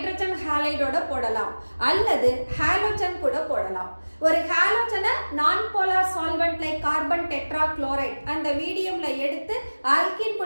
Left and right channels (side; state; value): both; inverted; correlation -1.00